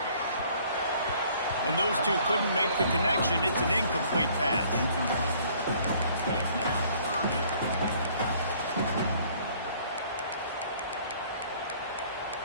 And those two couldn't make the connection. It's an incomplete pass.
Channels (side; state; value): both; inverted; correlation -0.58